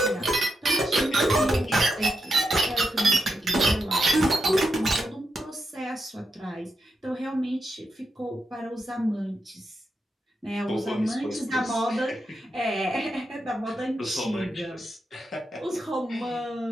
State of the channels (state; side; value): normal; both; correlation 0.86